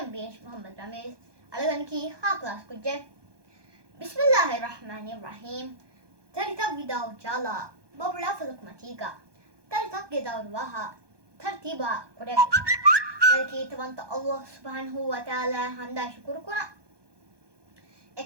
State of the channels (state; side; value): late; left; 1.2 ms